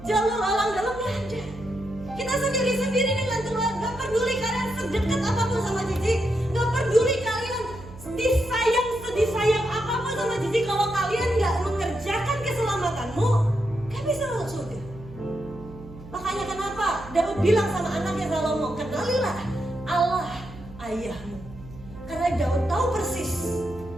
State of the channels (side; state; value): right; noise; hum, 17 dB below the sound